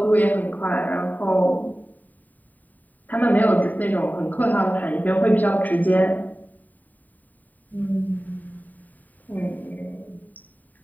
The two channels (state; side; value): late; right; 0.083 ms